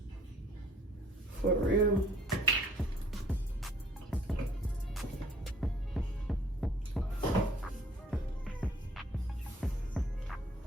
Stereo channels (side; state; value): both; normal; correlation 0.57